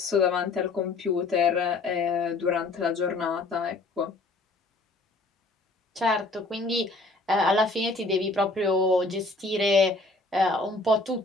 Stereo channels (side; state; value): right; quieter; 3.2 dB